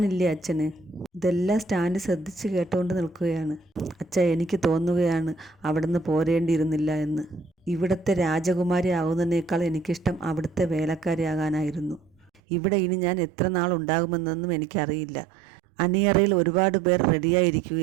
അച്ഛന്. ഇതെല്ലാം സ്റ്റാൻലി ശ്രദ്ധിച്ച് കേട്ടുകൊണ്ട് നിൽക്കുകയാണ്. അച്ഛാ, എനിക്ക് തോന്നുകയാണ് അവിടുന്ന് പോരേണ്ടിയിരുന്നില്ല എന്ന്. ഇവിടുത്തെ രാജകുമാരി ആകുന്നതിനേക്കാൾ എനിക്കിഷ്ടം അവിടുത്തെ വേലക്കാരിയാകാനായിരുന്നു. ഇവിടെ ഇനി ഞാൻ എത്ര നാൾ ഉണ്ടാകുമെന്നൊന്നും എനിക്കറിയില്ല. അണിയറയിൽ ഒരുപാട് പേർ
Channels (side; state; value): left; drops out; at 12.4 s